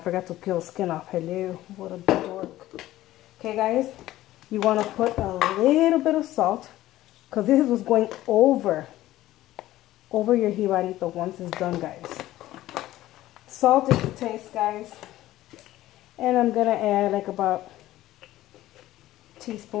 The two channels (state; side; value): quieter; right; 15.2 dB